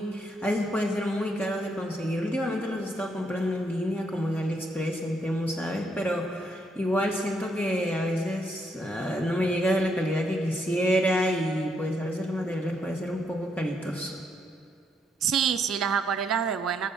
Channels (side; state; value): both; normal; correlation 0.75